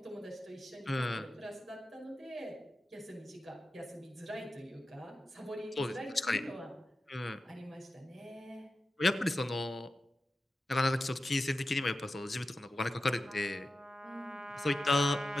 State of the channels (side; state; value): both; normal; correlation 0.92